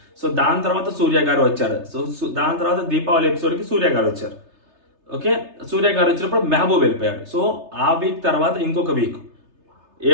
సో దాని తర్వాత సూర్య గారు వచ్చారు, సో దాని తర్వాత దీపావళి ఎపిసోడ్కి సూర్య గారు వచ్చారు. ఓకే, సూర్య గారు వచ్చినప్పుడు మెహబూబ్ వెళ్ళిపోయాడు. సో ఆ వీక్ తర్వాత ఇంకొక వీక్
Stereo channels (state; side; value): late; left; 3.3 ms